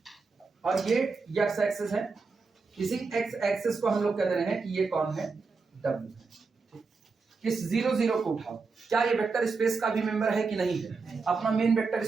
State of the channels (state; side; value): quieter; left; 4.5 dB